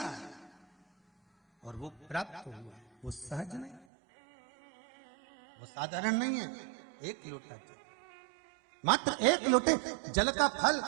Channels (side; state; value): left; drops out; at 3.9 s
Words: और वो प्राप्त हुआ, वो सहज नहीं, वो साधारण नहीं है। 1 लोटा जल मात्र 1 लोटे जल का फल